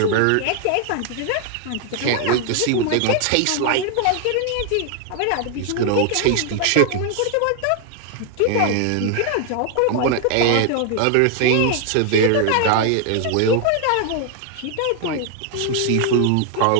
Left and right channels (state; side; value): different; both; correlation 0.00